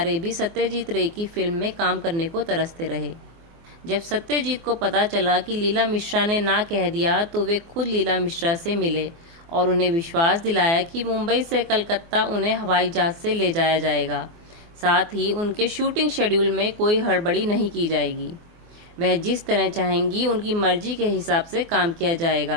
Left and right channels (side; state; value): left; late; 24 ms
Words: भी सत्यजीत रे की फिल्म में काम करने को तरसते रहे। जब सत्यजीत को पता चला कि लीला मिश्रा ने ना कह दिया तो वे खुद लीला मिश्रा से मिले और उन्हें विश्वास दिलाया कि मुंबई से कलकत्ता उन्हें हवाई जहाज से ले जाया जाएगा। साथ ही उनके शूटिंग शेड्यूल में कोई हड़बड़ी नहीं की जाएगी। वह जिस तरह चाहेंगी उनकी मर्जी के हिसाब से काम किया